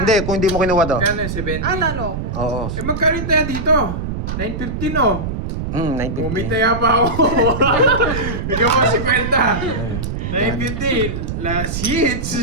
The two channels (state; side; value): noise; right; rumble, 4 dB below the sound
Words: Hindi, kung hindi mo kinuha to. Kano 70? Talo ako. Oo. Eh, magkano tayo dito? 9.50 no? 950. Umitaya pa ako. Ikaw mo 50. 9.50. Last hits.